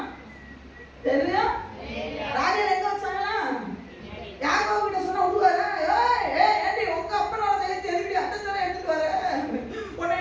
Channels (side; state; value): both; identical; correlation 1.00